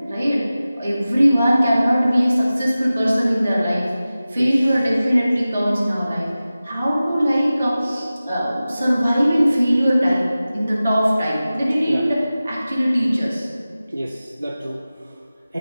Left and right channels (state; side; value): inverted; both; correlation -0.96